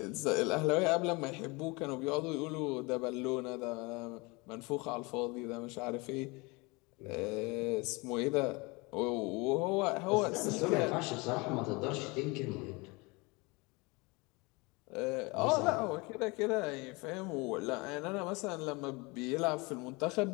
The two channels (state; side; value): quieter; right; 26.4 dB